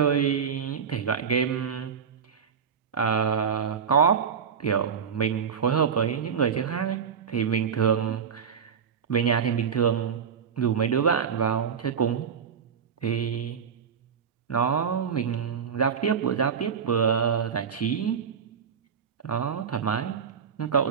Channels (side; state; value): left; quieter; 7.0 dB